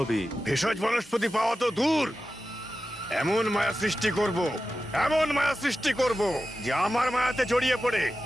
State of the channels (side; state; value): both; normal; correlation 0.93